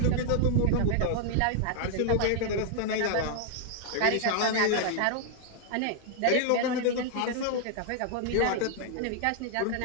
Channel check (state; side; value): different; both; correlation 0.00